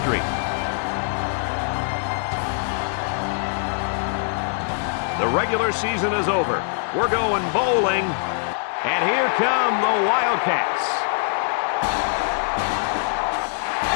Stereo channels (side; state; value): right; silent; digital silence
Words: The regular season is over. We're going bowling, and here come the Wildcats.